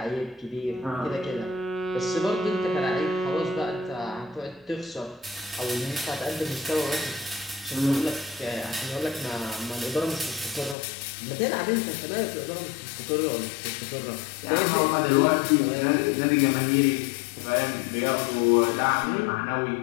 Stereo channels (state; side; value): drops out; right; at 10.8 s